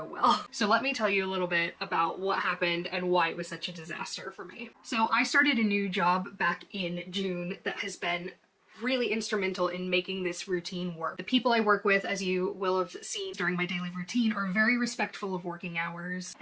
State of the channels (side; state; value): both; identical; correlation 1.00